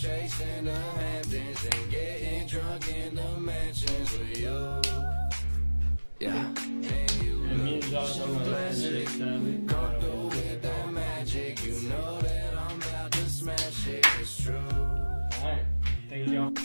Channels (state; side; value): inverted; both; correlation -1.00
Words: in the Hamptons and getting drunk in the mansions with you. Yeah. And you look so classic. Come through with that magic. You know that I'm about to smash it. It's true. Alright, thank y'all.